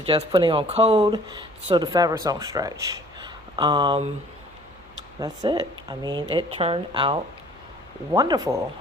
putting on code so the fabrics don't stretch. That's it. I mean, it turned out wonderful.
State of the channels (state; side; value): noise; right; hum, 26 dB below the sound